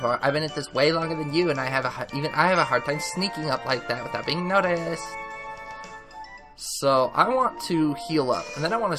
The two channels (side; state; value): both; identical; correlation 1.00